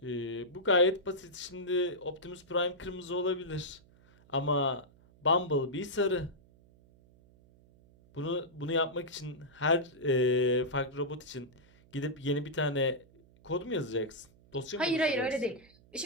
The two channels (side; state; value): right; noise; hum, 27 dB below the sound